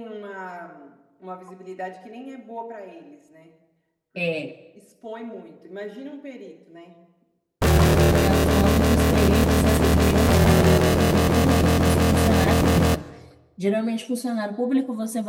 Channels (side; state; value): both; identical; correlation 1.00